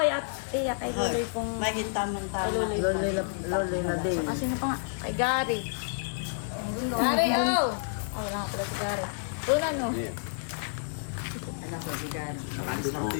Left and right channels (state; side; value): silent; right; digital silence